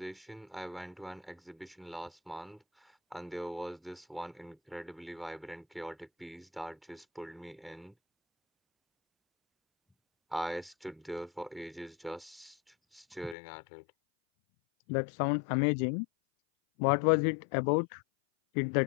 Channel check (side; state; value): right; drops out; at 13.4 s